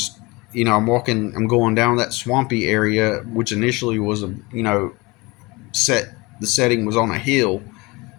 you know, I'm going down that swampy area, which initially was a, you know, the setting was on a hill.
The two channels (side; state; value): right; quieter; 24.3 dB